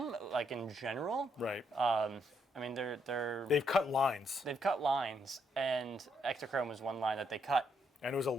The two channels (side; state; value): both; normal; correlation 0.75